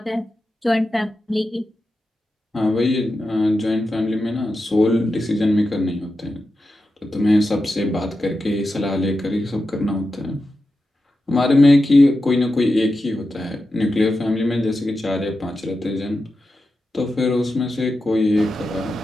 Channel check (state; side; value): normal; both; correlation 0.90